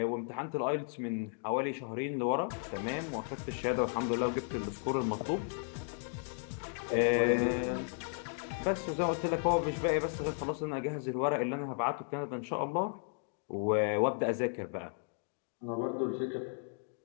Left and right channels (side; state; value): right; silent; 55 dB below the other